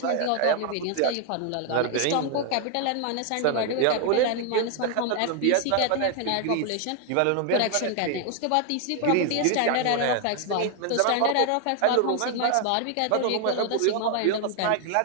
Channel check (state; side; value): different; both; correlation 0.00